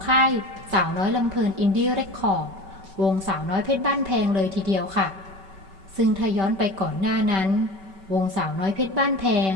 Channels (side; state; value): left; late; 5.2 ms